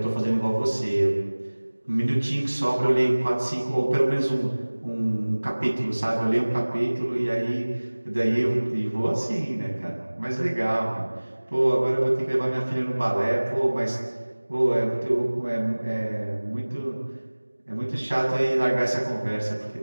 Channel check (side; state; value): both; inverted; correlation -1.00